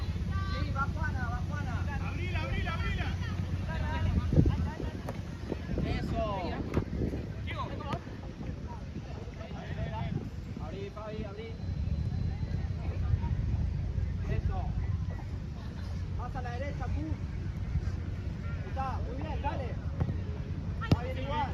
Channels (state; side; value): identical; both; correlation 1.00